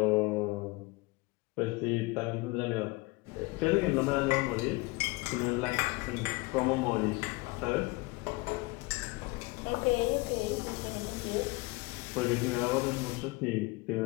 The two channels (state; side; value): quieter; right; 24.4 dB